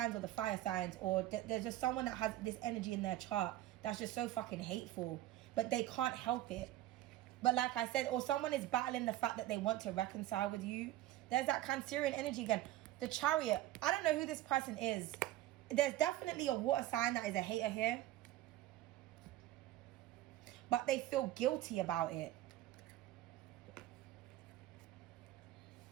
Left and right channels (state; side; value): quieter; left; 14.6 dB